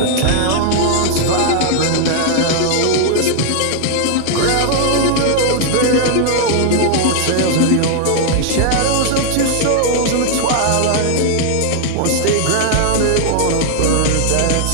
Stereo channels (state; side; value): different; both; correlation -0.01